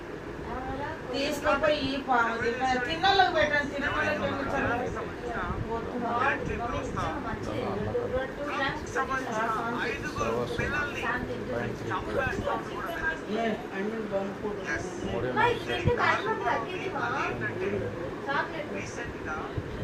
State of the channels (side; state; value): both; identical; correlation 1.00